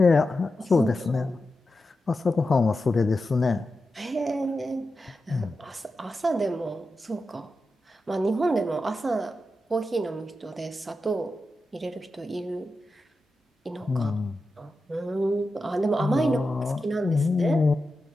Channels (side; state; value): both; normal; correlation 0.90